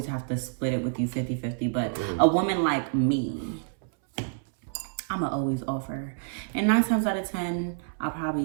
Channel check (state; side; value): silent; left; 59 dB below the other